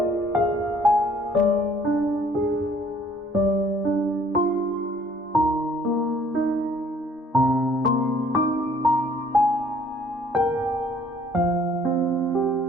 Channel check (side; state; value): both; normal; correlation 0.59